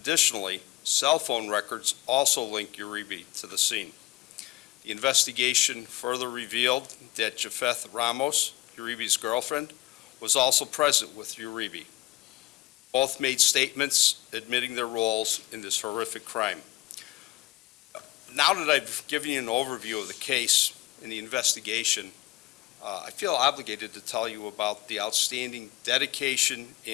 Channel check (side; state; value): right; quieter; 18.3 dB